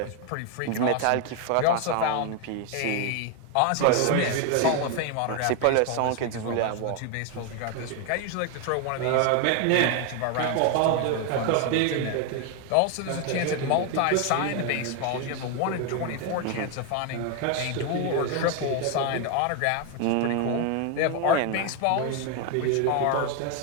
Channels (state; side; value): different; both; correlation 0.01